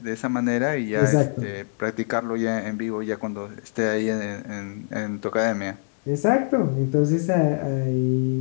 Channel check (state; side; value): silent; right; digital silence